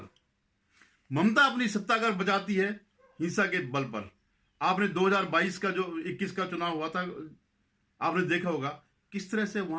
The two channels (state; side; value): identical; both; correlation 1.00